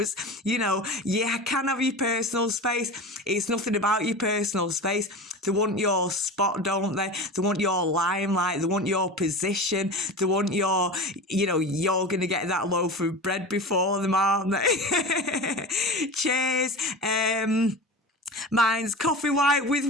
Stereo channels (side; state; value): both; normal; correlation 0.30